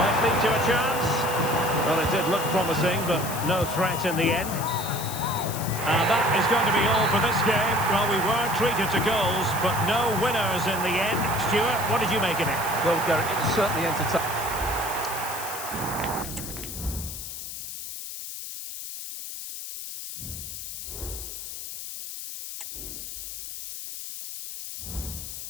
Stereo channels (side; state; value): left; noise; hiss, 8 dB below the sound